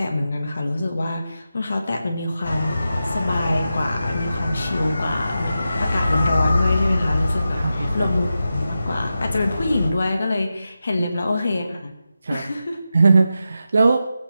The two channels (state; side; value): inverted; both; correlation -0.90